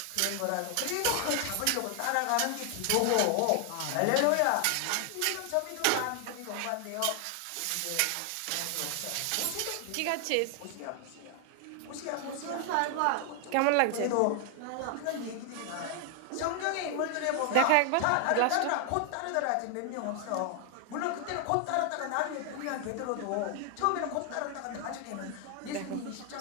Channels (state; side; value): different; both; correlation 0.00